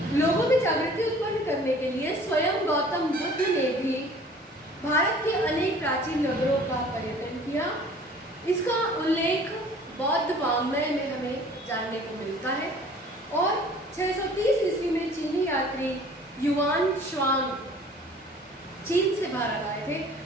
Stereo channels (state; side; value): normal; both; correlation 0.50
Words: लोगों में जागृति उत्पन्न करने के लिए स्वयं गौतम बुद्ध ने भी भारत के अनेक प्राचीन नगरों का पर्यटन किया। इसका उल्लेख बौद्ध वाङ्मय में हमें जानने को मिलता है और 630 ईस्वी में चीनी यात्री युआन श्वांग चीन से भारत आए थे